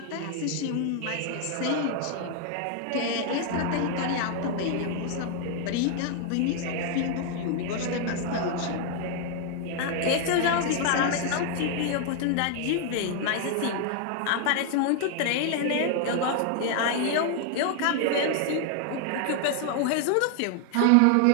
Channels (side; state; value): both; different; correlation 0.00